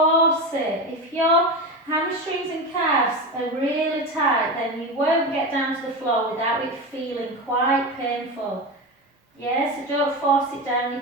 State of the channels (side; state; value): both; normal; correlation 0.21